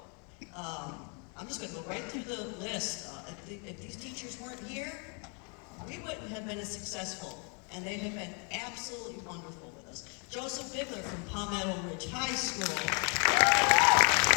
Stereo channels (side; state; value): right; quieter; 35.8 dB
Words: I'm just going to go right through the list. If these teachers weren't here, we wouldn't have been as successful. And they have been absolutely wonderful with us. Joseph Bigler from Palmetto Ridge High School.